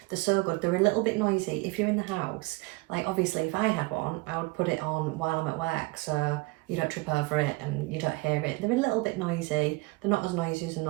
They're so good. They're a little bit noisy if you're in the house. Like obviously if I had one, I would put it on while I'm at work so you don't trip over it and you don't hear it. They're a little bit noisy. They're not as noisy as a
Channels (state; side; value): quieter; left; 24.3 dB